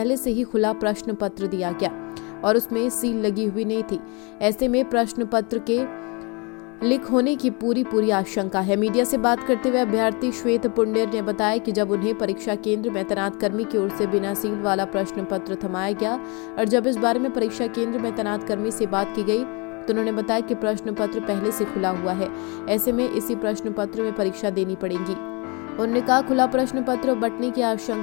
से ही खुला प्रश्न पत्र दिया गया और उसमें सील लगी हुई नहीं थी। ऐसे में प्रश्न पत्र के लीक होने की पूरी आशंका है। मीडिया से बात करते हुए अभ्यर्थी श्वेत पुंडेर ने बताया कि जब उन्हें परीक्षा केंद्र में तैनात कर्मी की ओर से बिना सील वाला प्रश्न पत्र थमाया गया और जब इस बारे में परीक्षा केंद्र में तैनात कर्मी से बात की गई तो उन्होंने बताया कि प्रश्न पत्र पहले से खुला हुआ है, ऐसे में इसी प्रश्न पत्र में परीक्षा देनी पड़ेगी। उन्होंने कहा खुला प्रश्न पत्र बंटने की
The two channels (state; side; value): quieter; right; 30.8 dB